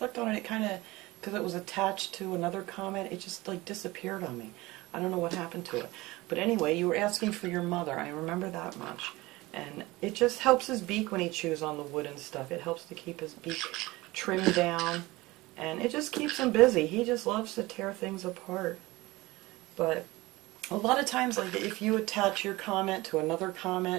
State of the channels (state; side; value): quieter; left; 20.5 dB